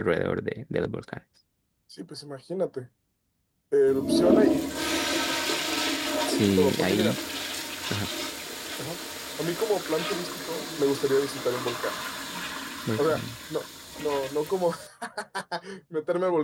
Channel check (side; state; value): both; identical; correlation 1.00